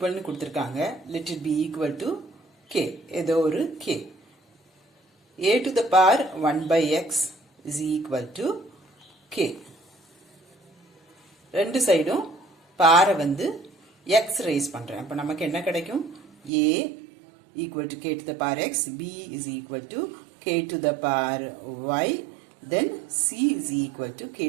கொடுத்திருக்காங்க. Let it be equal to k. ஏதோ ஒரு k. A to the power 1 by x is equal to k. ரெண்டு சைடும் பாரை வந்து x raise பண்றேன். அப்ப நமக்கு என்ன கிடைக்கும்? A equal to k to the power x, b is equal to k to the power y, then c is equal to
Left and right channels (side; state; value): left; drops out; at 16.5 s